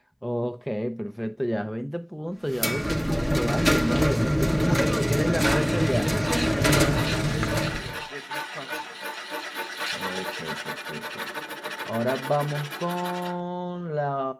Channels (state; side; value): identical; both; correlation 1.00